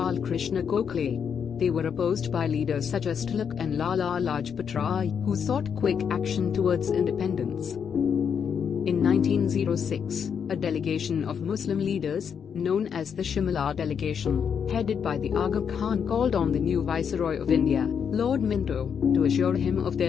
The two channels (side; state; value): right; quieter; 7.3 dB